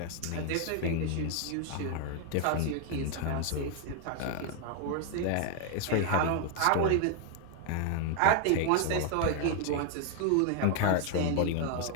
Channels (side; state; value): both; different; correlation 0.00